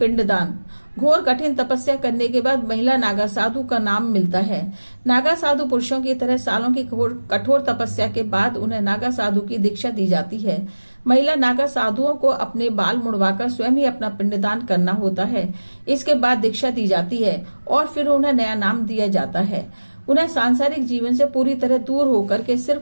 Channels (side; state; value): both; inverted; correlation -1.00